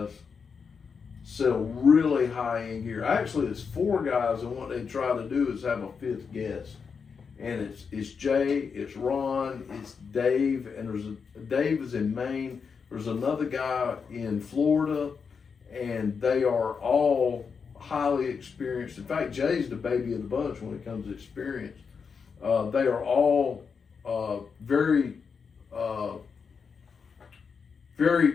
sell really high-end gear. Actually, it's 4 guys, and what they try to do is have a 5th guest. And it's Jay, it's Ron, it's Dave, and Dave is in Maine. There's another guy in Florida, and they are all highly experienced. In fact, Jay's the baby of the bunch when it comes to experience. They are all very,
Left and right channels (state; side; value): quieter; right; 5.8 dB